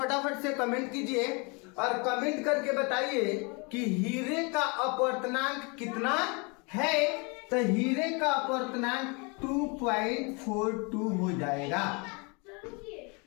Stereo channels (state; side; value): quieter; right; 31.1 dB